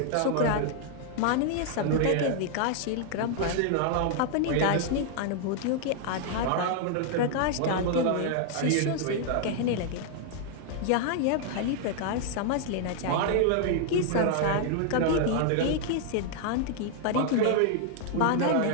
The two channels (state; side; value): different; both; correlation 0.00